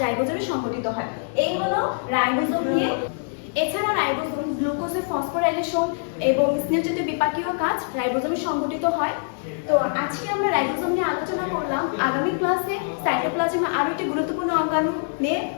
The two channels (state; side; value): silent; right; digital silence